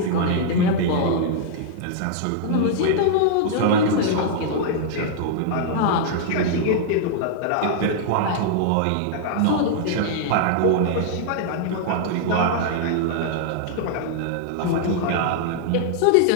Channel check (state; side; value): different; both; correlation -0.01